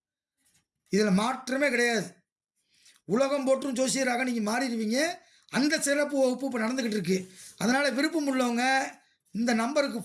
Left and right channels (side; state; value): both; identical; correlation 1.00